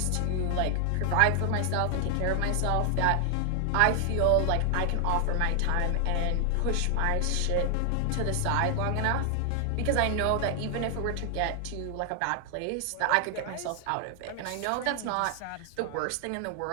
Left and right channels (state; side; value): different; both; correlation 0.00